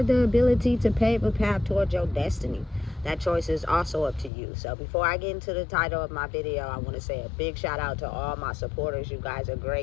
the ability to pave a path towards your destiny. That choice is also up to you. So before I get into the title of my video, I want to say a big shout out to all my supporters. You guys are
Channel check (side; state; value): right; drops out; at 4.3 s